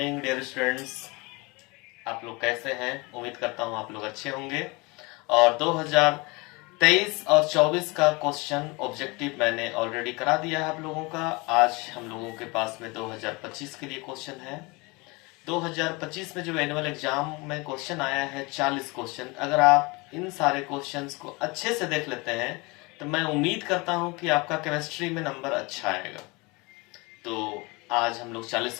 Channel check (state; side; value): quieter; right; 26.2 dB